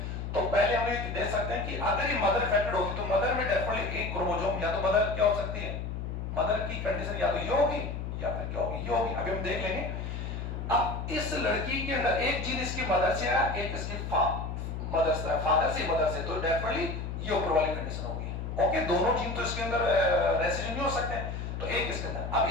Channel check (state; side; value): noise; left; hum, 5 dB below the sound